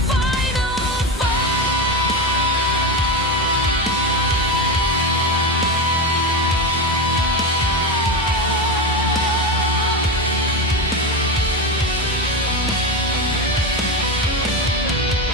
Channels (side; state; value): both; normal; correlation 0.17